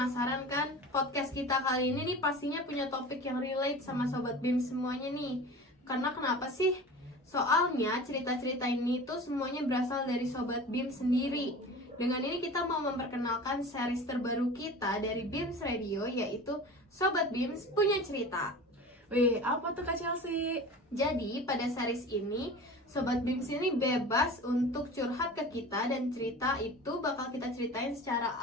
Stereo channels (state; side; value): normal; both; correlation 0.36